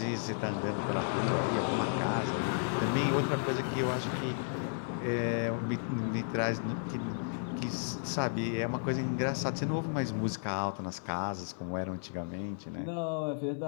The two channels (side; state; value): right; silent; 56 dB below the other